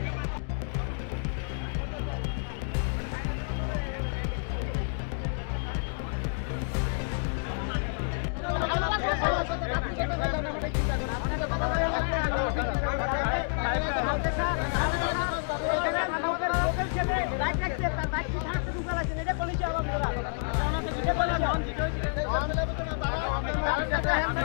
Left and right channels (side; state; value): right; silent; digital silence